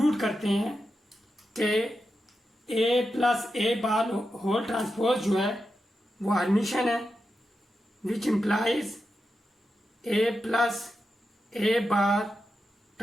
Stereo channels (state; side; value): normal; both; correlation 0.89